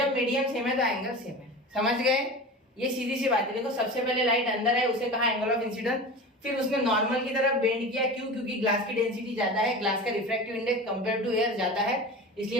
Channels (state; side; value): normal; both; correlation 0.32